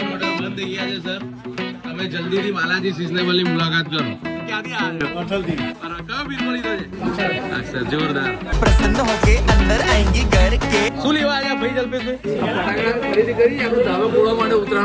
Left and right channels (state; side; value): identical; both; correlation 1.00